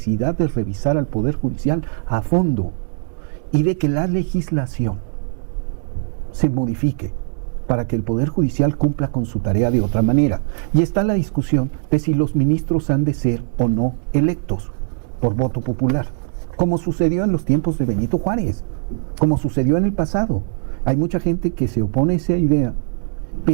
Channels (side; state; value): left; silent; digital silence